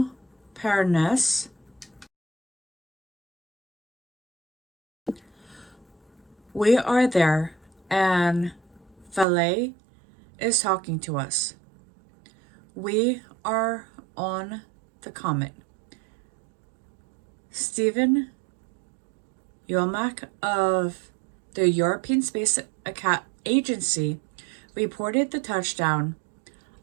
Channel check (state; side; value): drops out; left; at 9.2 s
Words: Pernes. We are there, and Valet is talking to us. We are on the comet. Stephen Yomak of the European Space Agency reported the touchdown